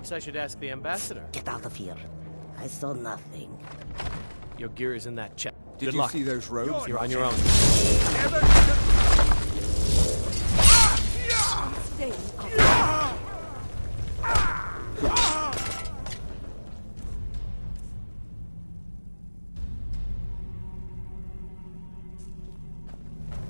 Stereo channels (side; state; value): both; inverted; correlation -1.00